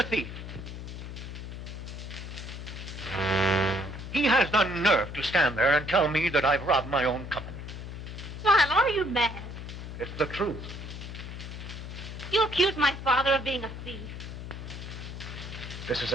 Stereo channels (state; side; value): noise; left; hum, 9 dB below the sound